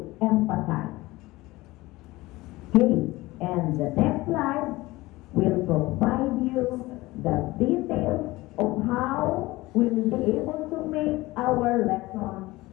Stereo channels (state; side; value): quieter; right; 19.8 dB